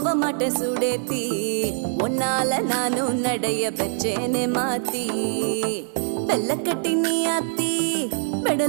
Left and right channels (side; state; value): left; silent; 63 dB below the other